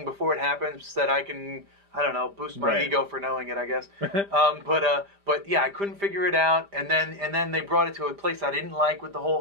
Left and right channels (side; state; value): left; late; 5.0 ms